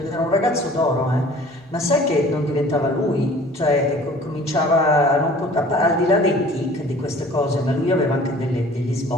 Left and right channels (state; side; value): normal; both; correlation 0.48